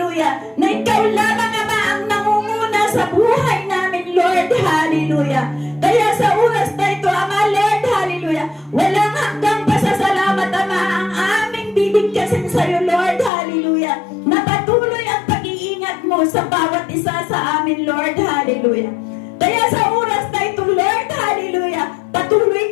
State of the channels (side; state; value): right; drops out; at 13.3 s